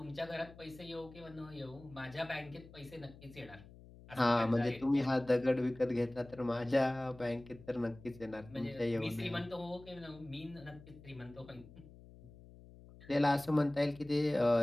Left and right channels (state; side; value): noise; left; hum, 20 dB below the sound